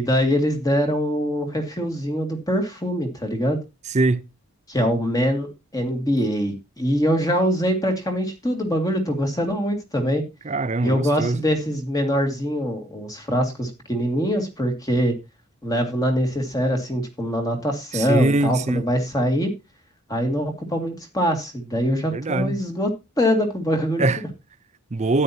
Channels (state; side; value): normal; both; correlation 0.68